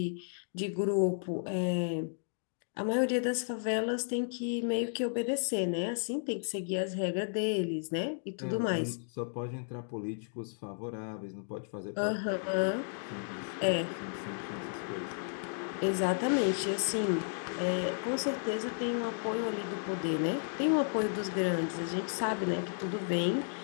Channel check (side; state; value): right; silent; digital silence